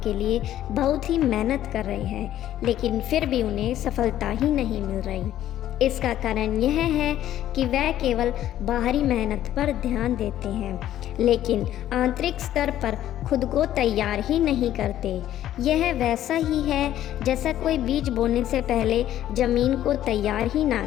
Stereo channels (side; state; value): right; quieter; 12.3 dB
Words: लिए बहुत ही मेहनत कर रहे हैं, लेकिन फिर भी उन्हें सफलता ही नहीं मिल रही। इसका कारण यह है कि वह केवल बाहरी मेहनत पर ध्यान देते हैं, लेकिन आंतरिक स्तर पर खुद को तैयार ही नहीं करते। यह वैसा ही है जैसा कोई बीज बोने से पहले ज़मीन को तैयार ही ना